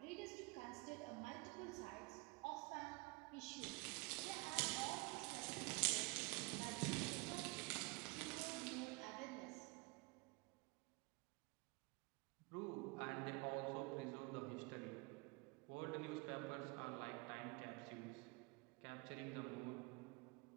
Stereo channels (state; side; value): quieter; left; 27.4 dB